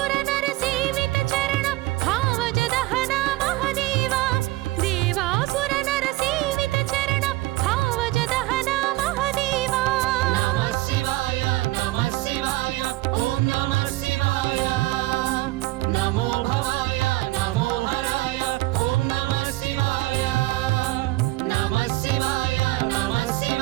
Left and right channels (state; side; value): quieter; left; 19.2 dB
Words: नर सेवित चरण भावज दहन महदेवा देवासुर नर सेवित चरण भावज दहन महदेवा नमः शिवाय ओम नमः शिवाय नमो भवाय नमो हराय ओम नमः शिवाय नमः शिवाय